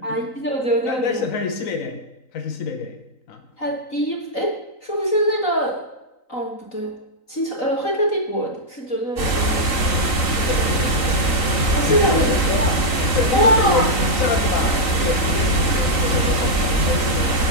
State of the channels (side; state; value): right; late; 3.9 ms